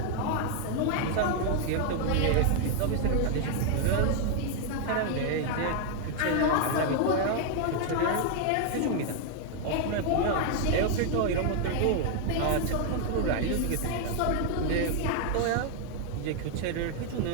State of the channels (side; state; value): both; different; correlation 0.00